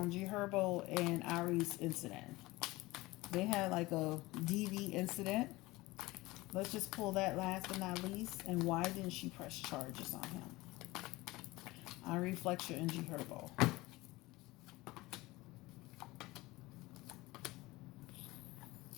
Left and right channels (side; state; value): right; quieter; 20.4 dB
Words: GHerbo and Ari's incident. They had like a DV incident. Let's just pull that last but not least. And why didn't she press charges on him? Ari Fletcher and GHerbo.